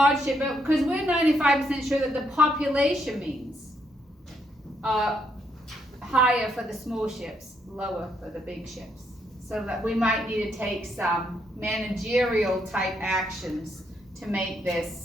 ship, because we're 95% sure that the population means higher for the small ships, lower for the big ships. So that we might need to take some managerial type actions to make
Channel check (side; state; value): both; normal; correlation 0.75